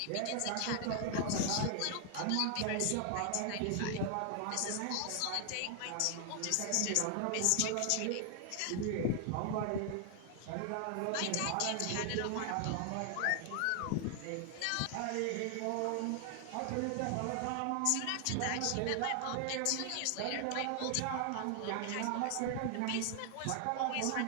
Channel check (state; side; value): different; both; correlation 0.00